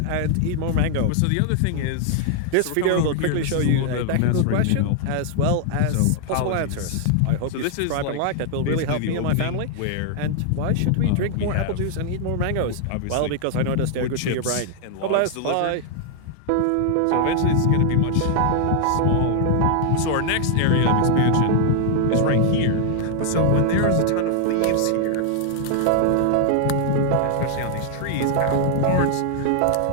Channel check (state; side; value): different; both; correlation 0.00